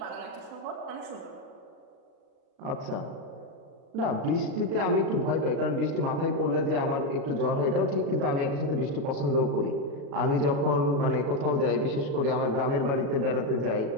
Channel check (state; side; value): late; left; 36 ms